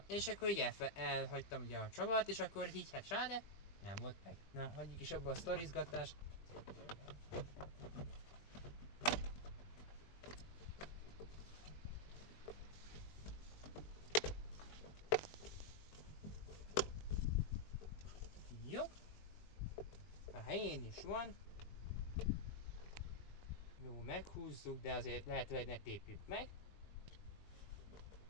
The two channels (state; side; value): late; right; 20 ms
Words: és akkor így elhagytam ugye a csavart, és akkor így hát sáde, nem volt meg. Na, hagyjuk is abba a sztorizgatást. helyén is van. Jó, meghúzzuk, de azért lehetőleg ne tépjük meg.